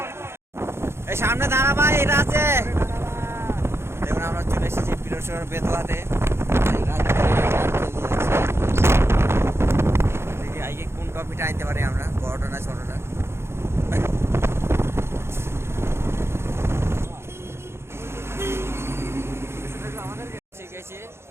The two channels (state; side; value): late; left; 0.12 ms